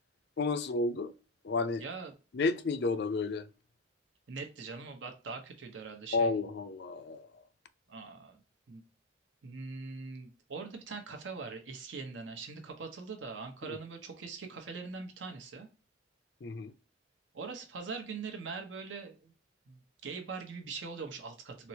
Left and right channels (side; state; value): both; normal; correlation 0.10